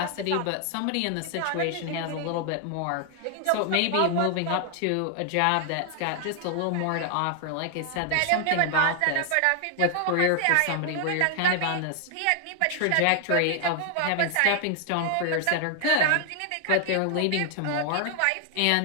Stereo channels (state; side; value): different; both; correlation 0.00